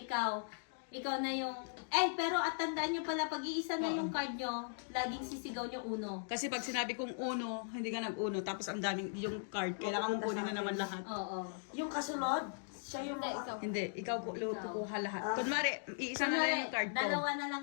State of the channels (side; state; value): right; silent; digital silence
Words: ikaw na yung, pero at tandaan nyo pala, pag iisa na yung card nyo, laging sisigaw nyo uno. Kasi pag sinabi kong uno, hindi ka nag-uno, tapos ang daming yung card, kailangan mong kunin na naman lahat. Oo. Yung kasunod, siya yung Hindi, ikaw kukuha lahat. Kunwari, iisa na lang yung card ko. Dalawa na lang